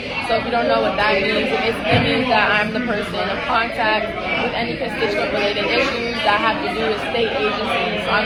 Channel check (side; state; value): both; identical; correlation 1.00